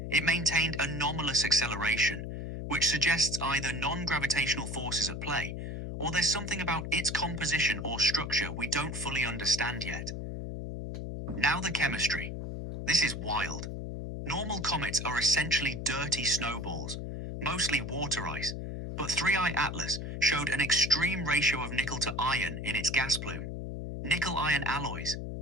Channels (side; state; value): left; noise; hum, 6 dB below the sound